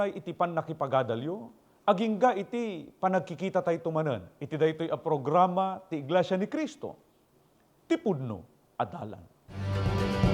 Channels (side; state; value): both; identical; correlation 1.00